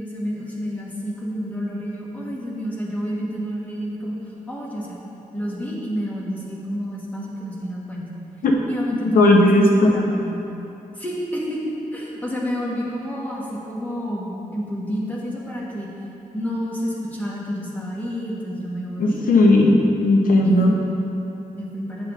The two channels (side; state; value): both; normal; correlation 0.76